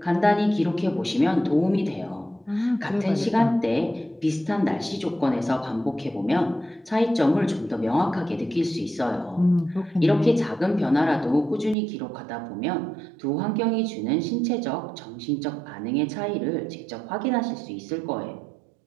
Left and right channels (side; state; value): left; drops out; at 11.8 s